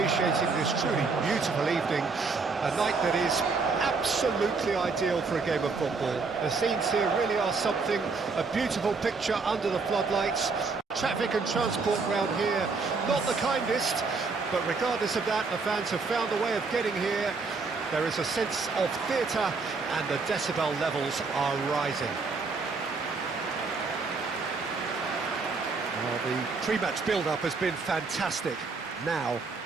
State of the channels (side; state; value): left; quieter; 4.4 dB